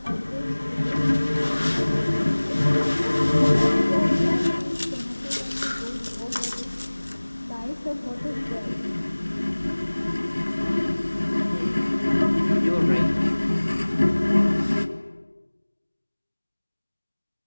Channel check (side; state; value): both; inverted; correlation -1.00